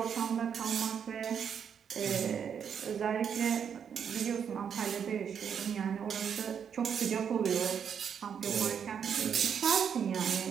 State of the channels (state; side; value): quieter; left; 7.6 dB